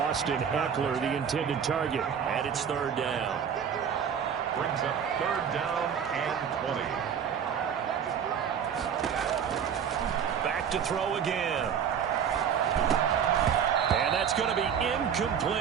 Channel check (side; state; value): left; quieter; 7.8 dB